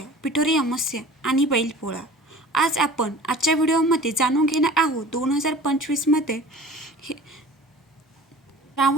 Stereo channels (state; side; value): normal; both; correlation 0.42